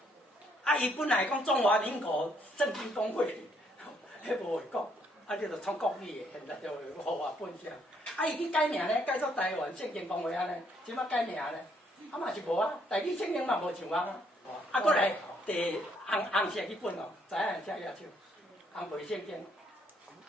啊，伊本来讲中华民国圣经公会，迄无会讲。啊，你就创国语的，现在就互我本上。啊，伊去改名咧，改做台湾圣经公会安尼，即摆改名咧，啊嘛是无啊，台语圣经嘛无像啊。啊，过来第红色迄本哦，知影写野手，红背圣经。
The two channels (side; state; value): both; normal; correlation 0.69